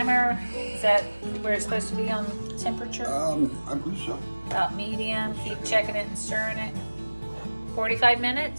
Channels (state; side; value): inverted; both; correlation -1.00